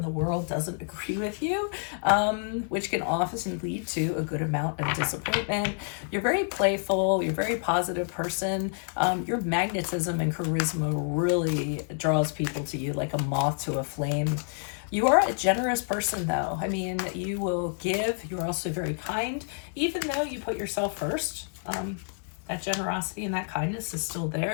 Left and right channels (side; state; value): right; silent; 57 dB below the other